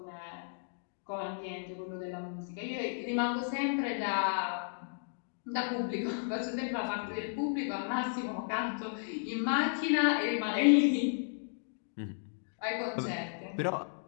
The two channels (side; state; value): right; silent; digital silence